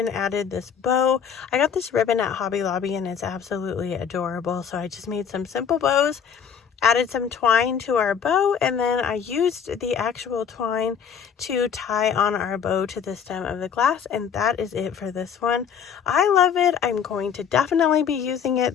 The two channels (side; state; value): right; quieter; 7.6 dB